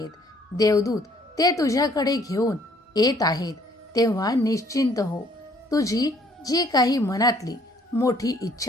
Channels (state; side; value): normal; both; correlation 0.62